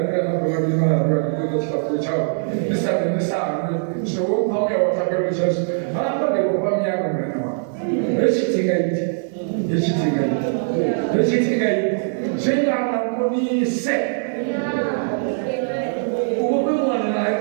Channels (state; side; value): silent; left; digital silence